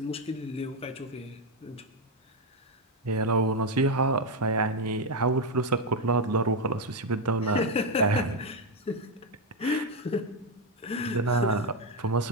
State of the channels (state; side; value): normal; both; correlation 0.05